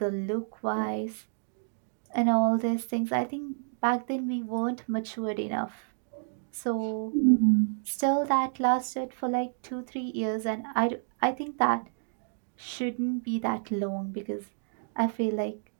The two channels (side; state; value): left; silent; digital silence